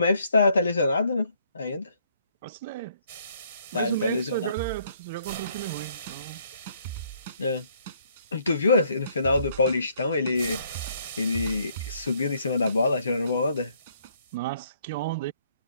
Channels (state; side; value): inverted; both; correlation -0.66